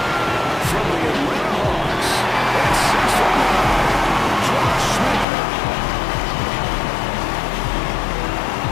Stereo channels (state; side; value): drops out; right; at 5.2 s